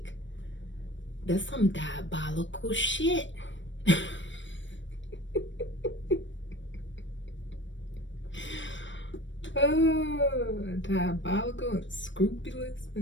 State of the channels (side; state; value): right; late; 0.54 ms